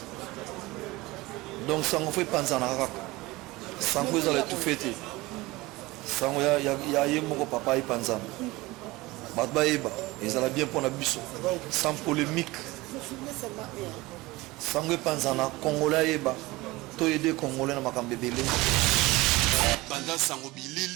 Donc Sango fait Panza Narak. Sango ils allaient tout fêter. Sango ya yemoko papa et Panza. Batba eba ils allaient bien pour la bus sans polémique. Sango Panza na Congolais eba. To aider Congolais na makambe belé. Panza Sango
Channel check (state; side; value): quieter; left; 20.9 dB